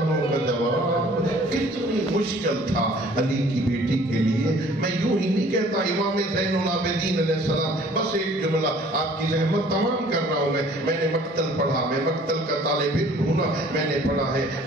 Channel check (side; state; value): both; normal; correlation 0.54